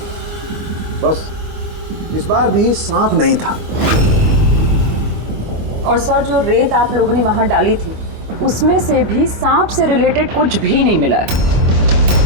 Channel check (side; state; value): left; late; 25 ms